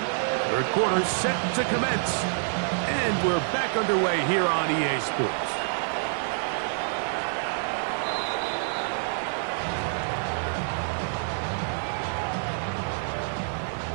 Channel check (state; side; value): silent; left; digital silence